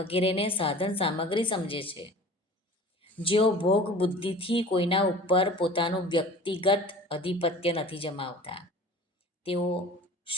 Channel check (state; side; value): normal; both; correlation 0.42